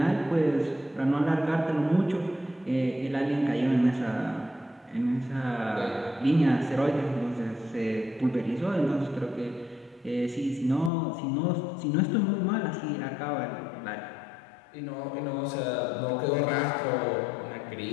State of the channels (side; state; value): right; drops out; at 10.9 s